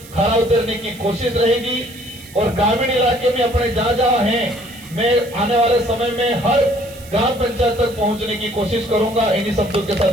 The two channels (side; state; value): right; noise; hiss, 20 dB below the sound